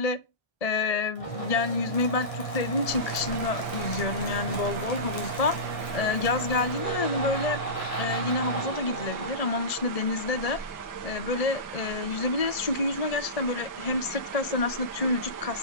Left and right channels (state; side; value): late; right; 1.7 ms